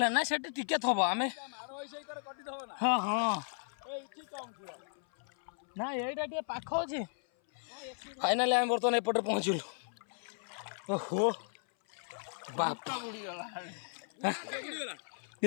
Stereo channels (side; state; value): right; silent; 54 dB below the other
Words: ନା ସେଠି ଟିକେ ଥବ ଆମେ ହଁ ହଁ ନା ଏଇଟା ଟିକେ ପାଖ ଅଛି। ଫାଇନାଲି ଆମେ ବର୍ତ୍ତମାନ ଏପଟେ ପହଞ୍ଚିଲୁ। ଓହୋ ବାପ